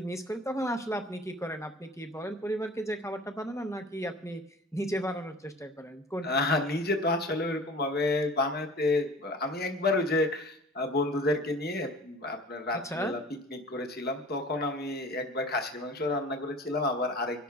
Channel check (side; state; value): both; normal; correlation 0.43